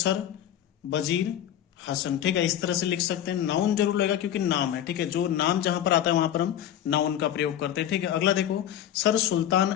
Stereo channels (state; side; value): quieter; right; 11.0 dB